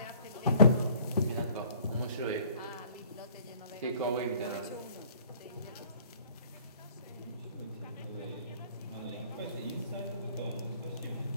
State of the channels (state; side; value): inverted; both; correlation -0.55